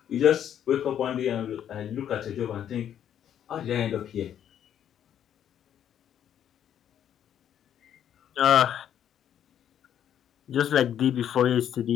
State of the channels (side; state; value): right; quieter; 9.8 dB